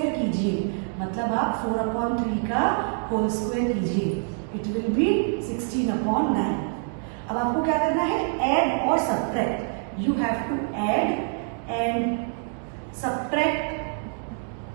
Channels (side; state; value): left; silent; 59 dB below the other